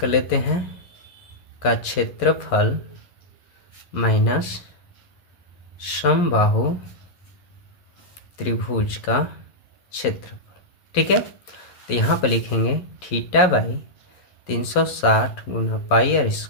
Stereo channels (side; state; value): right; late; 11 ms